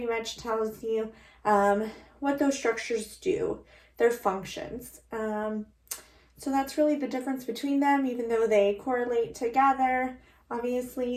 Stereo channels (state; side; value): identical; both; correlation 1.00